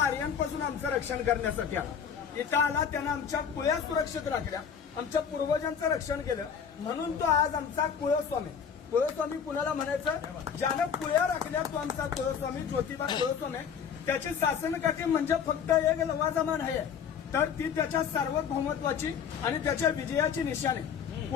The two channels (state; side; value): quieter; right; 7.3 dB